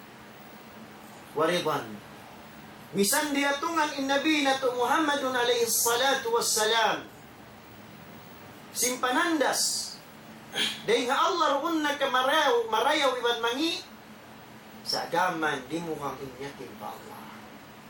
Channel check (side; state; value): both; identical; correlation 1.00